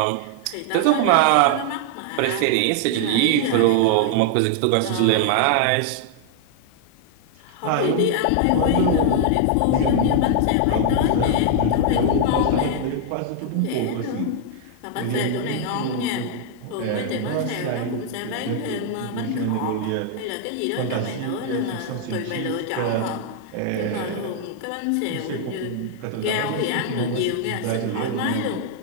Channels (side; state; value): both; different; correlation 0.00